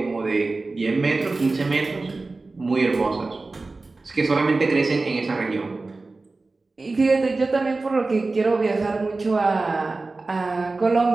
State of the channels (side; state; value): left; quieter; 3.5 dB